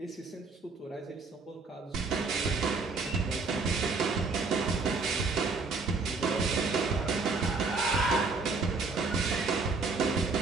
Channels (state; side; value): quieter; left; 4.0 dB